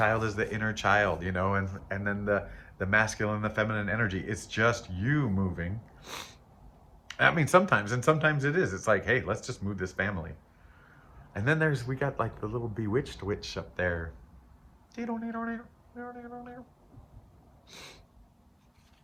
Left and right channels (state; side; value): identical; both; correlation 1.00